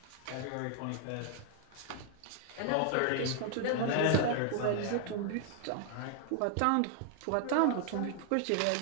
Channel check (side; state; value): both; different; correlation 0.00